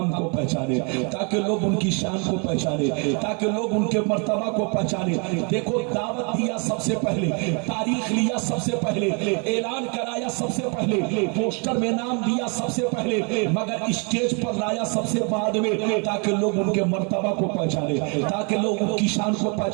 کو پہچانے، تاکہ لوگ ان کی شان کو پہچانے، تاکہ لوگ ان کے مرتبہ کو پہچانے۔ دیکھو دعوت دیا سب سے پہلے، تاریخ لیا سب سے پہلے، اعلان کرایا سب سے پہلے، پوسٹر میں نام دیا سب سے پہلے، مگر اسٹیج پر لایا سب سے بعد میں، تاکہ لوگ ان کے مرتبہ کو پہچانے، تاکہ لوگ ان کی شان کو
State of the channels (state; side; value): quieter; left; 35.1 dB